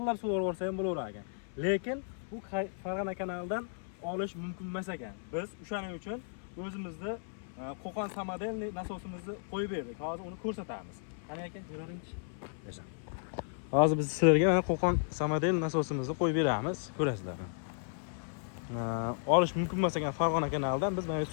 suvarsa ham bo'laverar ekan. Lekin bu Farg'ona kanalidan olish mumkin emas ekan. Biz o'shaning uchun o'zimizda Qo'qon samodelniy nasosimizni qo'yib berdik. Hozir uni ko'rsatamiz. Qani aka, ko'raringchi. Yaxshi. Hozir biz sizlarga Qo'qon samodel nasosimizni qo'yib beramiz, ko'rasizlar. Olish mumkin emas ekan Farg'ona kanalidan biz mana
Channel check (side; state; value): right; silent; 55 dB below the other